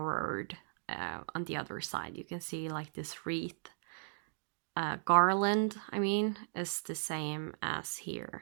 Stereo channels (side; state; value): left; silent; digital silence